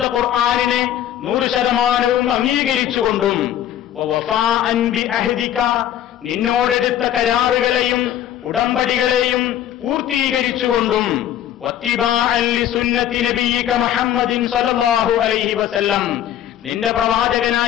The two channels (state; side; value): quieter; right; 11.1 dB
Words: ഖുർആനിനെ 100% അംഗീകരിച്ചുകൊണ്ടും, വവഫാഅൻ ബിഅഹദിക, നിന്നോടെടുത്ത കരാറുകളെയും ഉടമ്പടികളെയും പൂർത്തീകരിച്ചുകൊണ്ടും, വത്തിബാഅൻ ലിസുന്നതി നബിയ്യിക മുഹമ്മദിൻ സല്ലല്ലാഹു അലൈഹി വസല്ലം, നിന്റെ